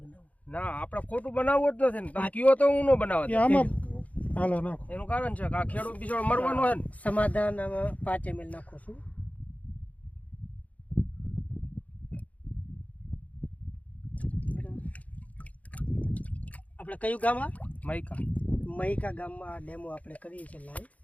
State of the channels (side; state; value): right; late; 0.070 ms